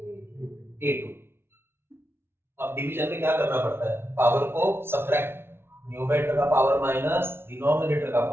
A2। अब डिवीजन में क्या करना पड़ता है? पावर को सब्ट्रैक्ट, न्यूमरेटर का पावर माइनस डिनोमिनेटर का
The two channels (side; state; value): left; late; 0.11 ms